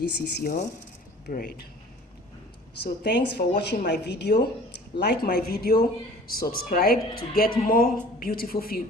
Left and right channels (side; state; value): both; normal; correlation 0.47